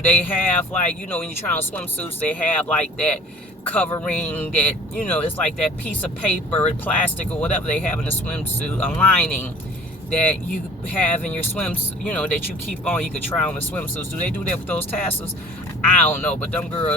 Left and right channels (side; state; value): both; normal; correlation 0.48